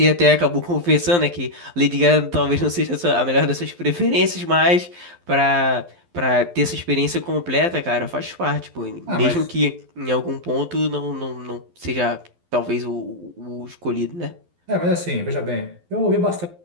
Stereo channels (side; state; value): left; late; 12 ms